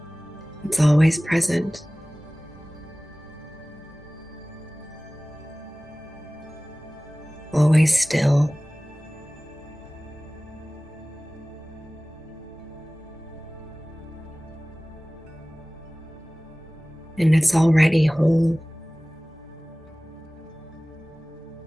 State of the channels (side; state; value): both; normal; correlation 0.98